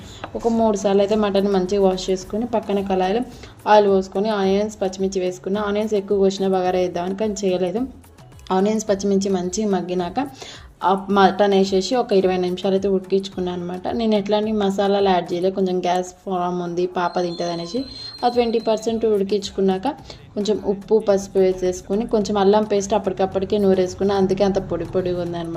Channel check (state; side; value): identical; both; correlation 1.00